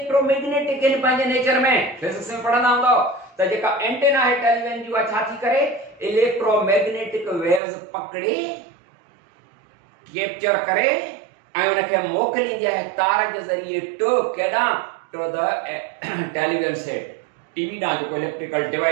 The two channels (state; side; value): drops out; left; at 7.6 s